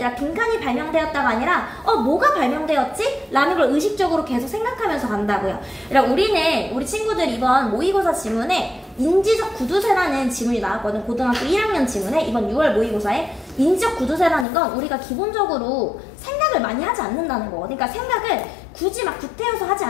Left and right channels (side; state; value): right; drops out; at 14.5 s